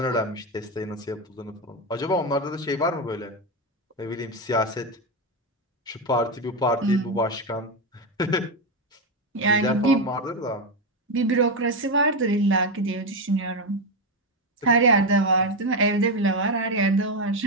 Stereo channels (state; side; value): normal; both; correlation 0.09